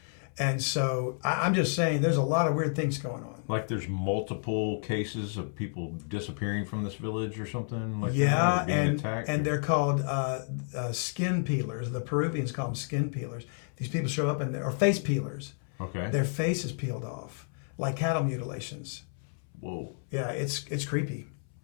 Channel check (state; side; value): silent; right; 57 dB below the other